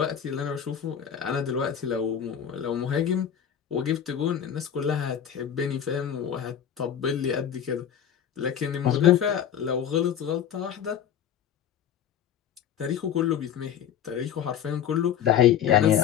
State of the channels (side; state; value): right; quieter; 9.1 dB